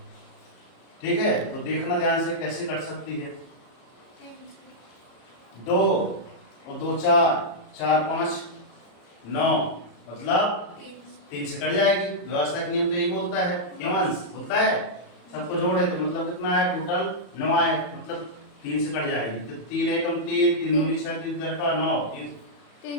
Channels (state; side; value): late; right; 34 ms